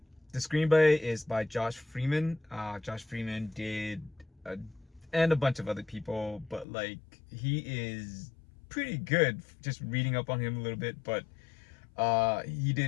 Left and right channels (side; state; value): right; drops out; at 6.7 s